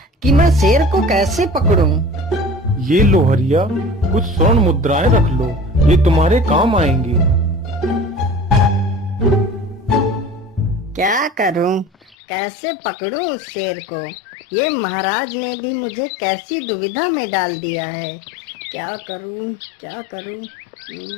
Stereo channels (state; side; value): drops out; right; at 12.2 s